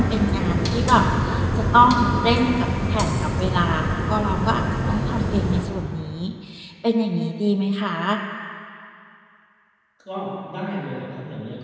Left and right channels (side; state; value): both; identical; correlation 1.00